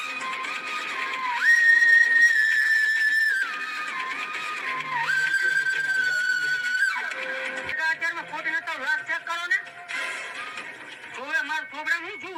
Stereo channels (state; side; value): identical; both; correlation 1.00